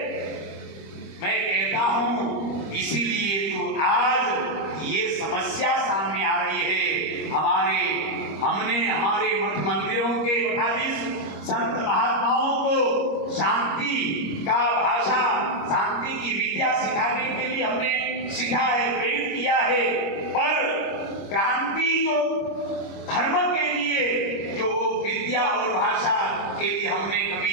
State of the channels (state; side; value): late; right; 25 ms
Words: मैं कहता हूं इसीलिए तो आज ये समस्या सामने आ रही है। हमने हमारे मठ मंदिरों के मठाधीश संत महात्माओं को शांति का भाषा, शांति की विद्या सिखाने के लिए हमने सिखा है, प्रेरित किया है। पर क्रांति जो धर्म के लिए जो विद्या और भाषा के लिए हमने